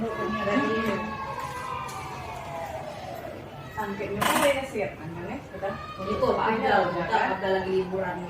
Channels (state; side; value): identical; both; correlation 1.00